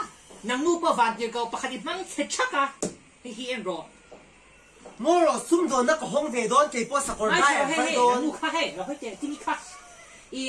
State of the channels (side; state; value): both; identical; correlation 1.00